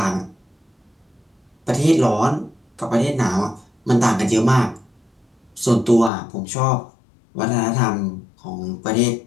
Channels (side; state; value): right; drops out; at 6.1 s